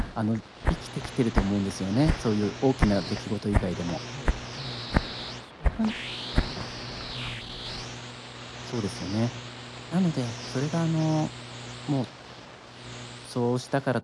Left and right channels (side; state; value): both; identical; correlation 1.00